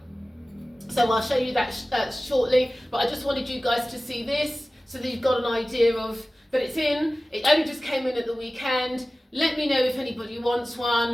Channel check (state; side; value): normal; both; correlation 0.97